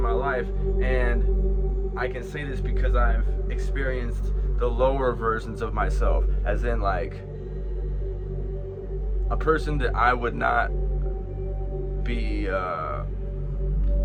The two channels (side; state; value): both; identical; correlation 1.00